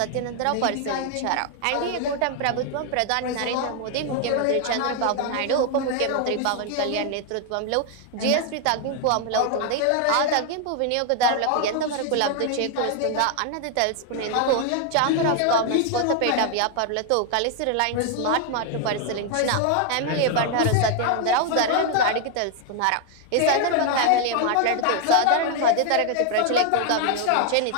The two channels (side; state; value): both; different; correlation 0.00